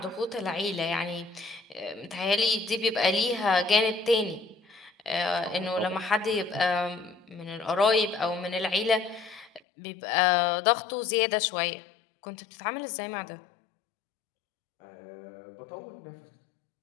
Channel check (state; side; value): drops out; right; at 9.6 s